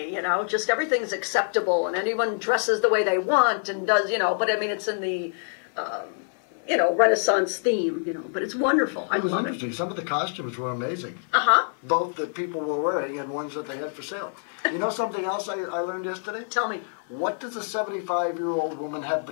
just everything's acceptable and anyone dresses the way they want and does, but I mean, it's in the, Renaissance theme, but it's wonderful. It was interesting. Some of the costumes were amazing. Uh-huh. Both that people were wearing and ones that they had for sale. You know something else I learned yesterday? Tell me. What does a 75-year-old woman have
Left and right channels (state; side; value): silent; right; 58 dB below the other